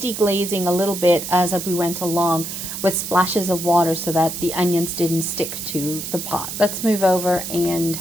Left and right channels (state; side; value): noise; right; hiss, 7 dB below the sound